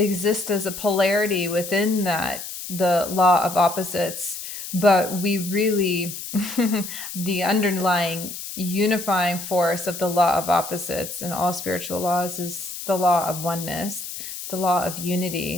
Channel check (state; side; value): noise; left; hiss, 9 dB below the sound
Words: as a polarity within that, the law of opposites. But we really, the underlying unifying force of the law of opposites and all spiritual laws is the law of oneness, the law of